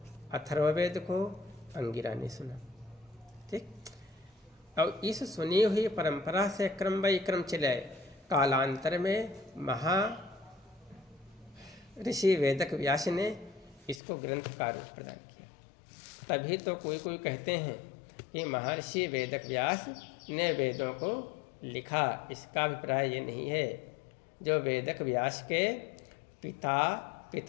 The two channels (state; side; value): drops out; right; at 14.0 s